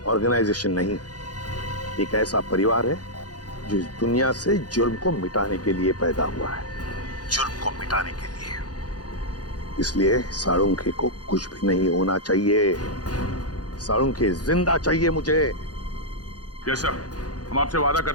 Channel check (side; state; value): right; late; 0.69 ms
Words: ऑर्गेनाइजेशन नहीं, एक ऐसा परिवार है जो इस दुनिया से जुर्म को मिटाने के लिए पैदा हुआ है, जुर्म को मिटाने के लिए। इसलिए साळुंखे को कुछ भी नहीं होना चाहिए, साळुंखे जिंदा चाहिए मुझे। यस सर, हम आपसे वादा